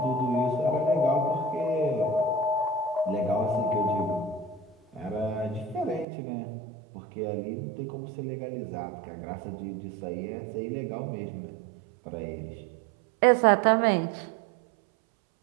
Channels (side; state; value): left; drops out; at 6.1 s